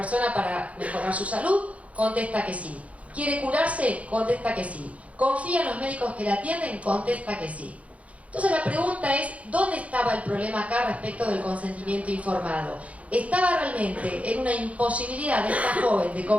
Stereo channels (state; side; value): late; left; 0.065 ms